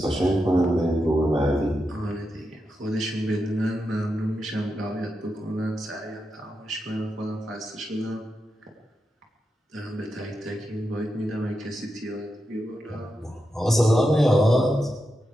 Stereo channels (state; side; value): normal; both; correlation 0.87